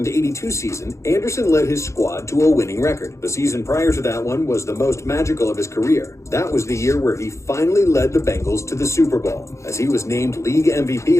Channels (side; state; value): right; late; 0.14 ms